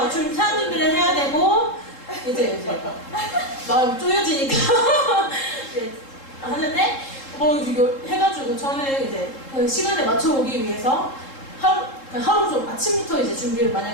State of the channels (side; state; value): right; late; 3.7 ms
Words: 좀 사람 준비를 해야 되고 이제 마음 쪼여지니까 하는데 해가지고 저는 이제 그 시간에 맞춰 오기 위해서 하루 좀 아침부터 이제 준비를